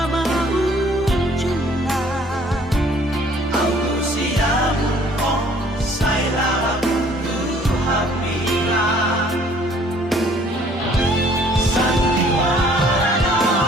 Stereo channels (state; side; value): normal; both; correlation 0.58